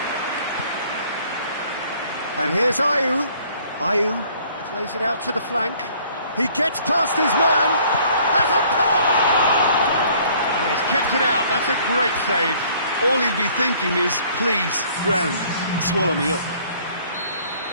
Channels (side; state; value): both; inverted; correlation -0.58